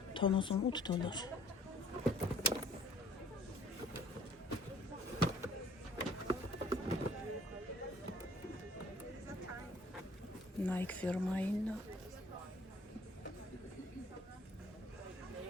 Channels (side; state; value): both; normal; correlation 0.55